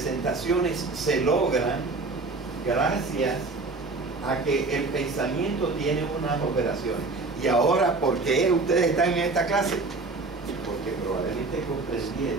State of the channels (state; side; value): quieter; left; 3.6 dB